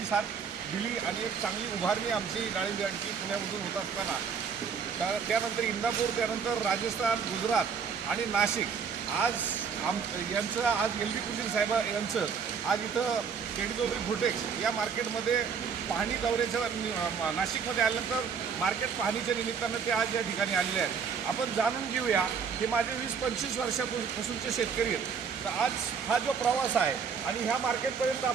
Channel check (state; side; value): quieter; left; 6.3 dB